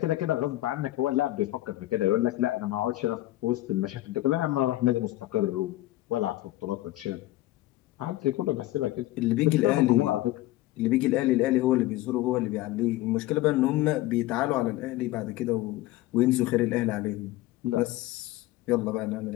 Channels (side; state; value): right; quieter; 16.7 dB